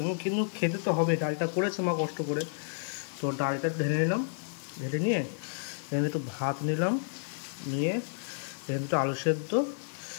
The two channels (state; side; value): silent; right; digital silence